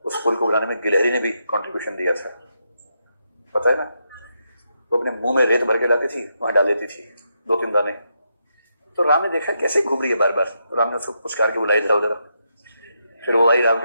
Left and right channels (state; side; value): inverted; both; correlation -0.82